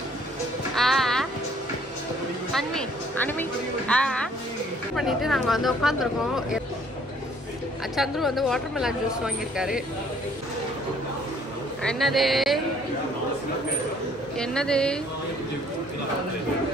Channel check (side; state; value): both; normal; correlation 0.60